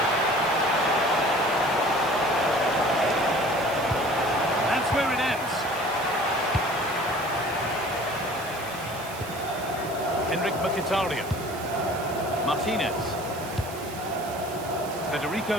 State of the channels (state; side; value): noise; right; hiss, 15 dB below the sound